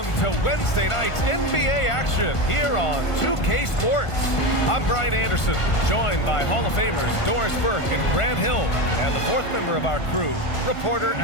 Welcome to Wednesday night's NBA action here on 2K Sports. I'm Brian Anderson, joined by Hall of Famers Doris Burke and Grant Hill, and the fourth member of our crew, reporter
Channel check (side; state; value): right; late; 1.5 ms